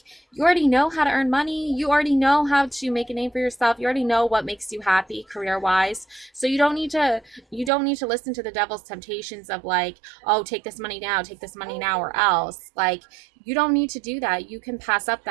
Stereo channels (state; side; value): drops out; left; at 7.7 s